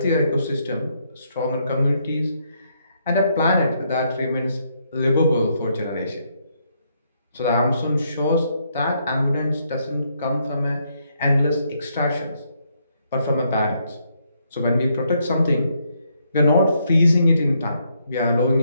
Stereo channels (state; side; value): inverted; both; correlation -0.74